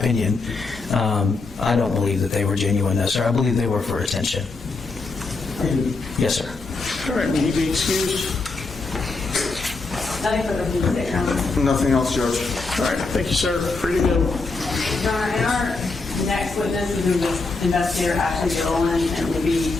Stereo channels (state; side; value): quieter; right; 3.8 dB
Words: I don't believe that they were genuine, no, sir. I believe they were for attention. Yes, sir. All right, will he be excused? Nothing further from the Your Honor. Nothing else, Judge? All right, thank you, sir. Free to go. Your Honor, and our next witness is investigator Ashley Gilliland, and